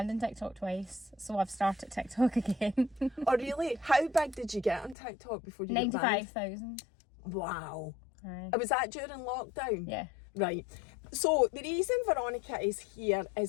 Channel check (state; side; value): drops out; right; at 5.0 s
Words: in TikTok twice, so I've started TikTok again. Oh really? How big did you get on TikTok before you got banned? 95,000. Wow. Aye. Was that during lockdown? Yeah. Right. So the reason Veronica is here